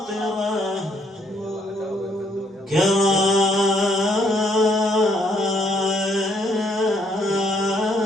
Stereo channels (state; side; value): normal; both; correlation 0.69